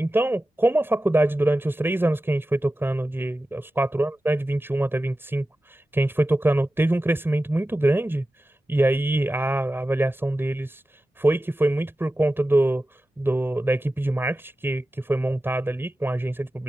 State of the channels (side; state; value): both; normal; correlation 0.94